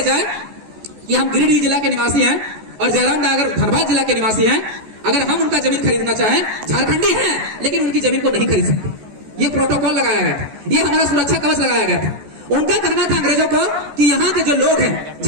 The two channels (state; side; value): late; left; 14 ms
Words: जाए कि हम गिरिडीह जिला के निवासी हैं और जयराम नगर धनबाद जिला के निवासी हैं, अगर हम उनका जमीन खरीदना चाहें, झारखंडी हैं लेकिन उनकी जमीन को नहीं खरीद सकते, ये प्रोटोकॉल लगाया गया था, ये हमारा सुरक्षा कवच लगाया गया था। उनका कहना था अंग्रेजों को कि यहाँ के जो लोग हैं,